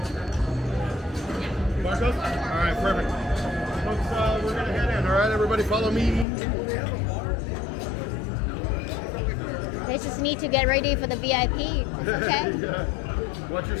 Marcos? Alright, perfect. Folks, we're gonna head in. Alright, everybody follow me. They just need to get ready for the VIP. Okay. Yeah. What's your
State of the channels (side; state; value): right; drops out; at 6.2 s